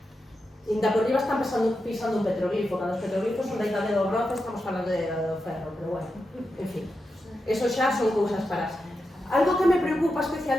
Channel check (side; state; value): both; normal; correlation 0.88